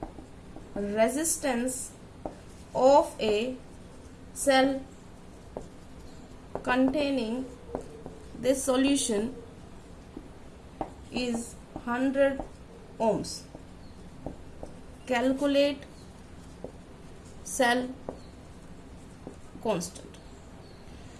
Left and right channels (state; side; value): identical; both; correlation 1.00